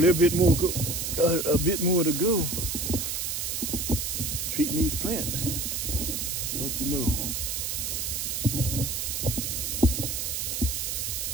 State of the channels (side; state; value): right; noise; hiss, 2 dB below the sound